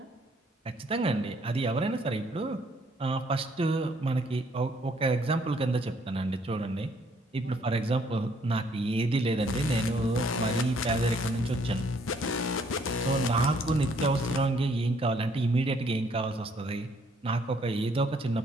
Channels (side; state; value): both; normal; correlation 0.65